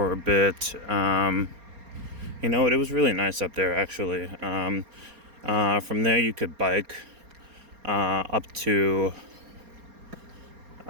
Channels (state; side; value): late; left; 4.3 ms